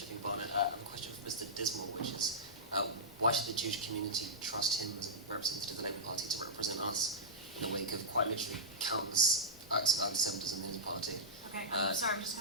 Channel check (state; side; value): normal; both; correlation -0.12